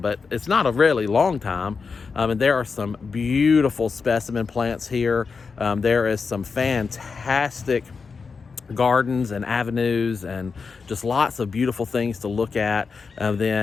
but it's not a really long time. And there are some beautiful specimen plants here. There is some fantastic gardens and avenues and just lots of beautiful things to look at.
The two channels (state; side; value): quieter; right; 5.0 dB